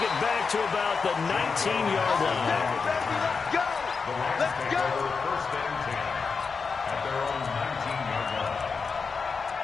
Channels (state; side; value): quieter; right; 5.1 dB